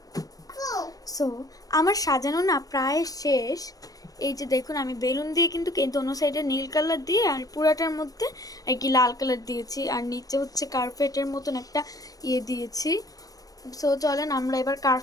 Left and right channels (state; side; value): late; right; 0.18 ms